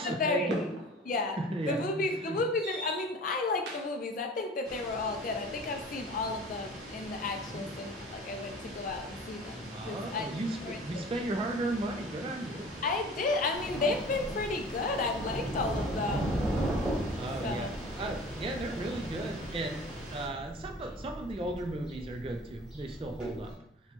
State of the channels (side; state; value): both; normal; correlation 0.43